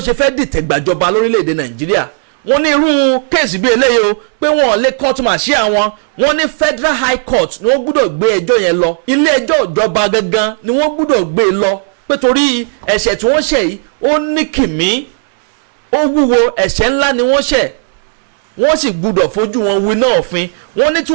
ṣe fẹ́ dìtẹ̀gbàjọba lórílẹ̀‐èdè Nàìjíríà. Wọ́n ní irú kéèsì bí eléyìí o pé wọ́n lè court martial wọn. Wọ́n ní Federal High Court ni wọ́n gbọ́dọ̀ gbé ẹjọ́ yẹn lọ, ilé ẹjọ́ ìjọba gangan ni wọ́n gbọ́dọ̀ gbé lọ, pé torí ẹ̀ṣẹ̀ tí wọ́n ṣẹ̀ yìí ó ní kìmí, ó wúwo, ẹ̀ṣẹ̀ ńlá ni wọ́n ṣẹ̀, wọ́n sì gbọ́dọ̀ fojú wọn winá òfin. Wọ́n ní tí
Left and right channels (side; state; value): left; silent; digital silence